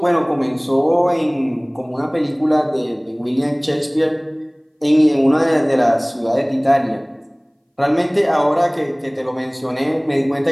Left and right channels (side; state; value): both; identical; correlation 1.00